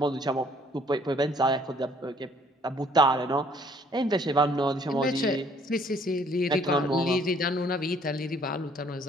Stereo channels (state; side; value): normal; both; correlation 0.61